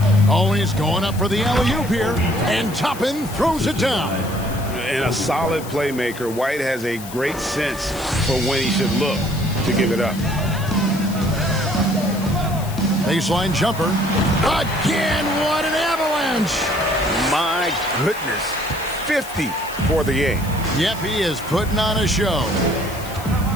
Oh, he's going up for the alley-oop here. And Toppin throws it down. And a solid playmaker. White has a great sense for when he should look to give it up. Baseline jumper. Again, what an avalanche. My goodness. 50 for the game. Yep, he is putting on a show.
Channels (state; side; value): noise; left; hiss, 15 dB below the sound